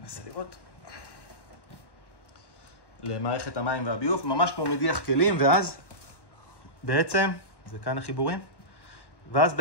לראות. למערכת המים והביוב, ממש כמו מדיח כלים, ואז בעצם, זה כאן החיבורים, ואז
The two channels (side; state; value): right; late; 1.1 ms